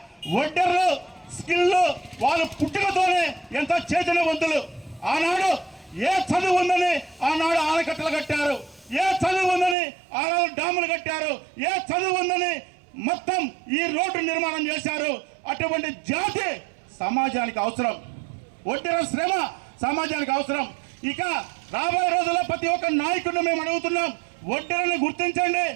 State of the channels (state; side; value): drops out; left; at 9.8 s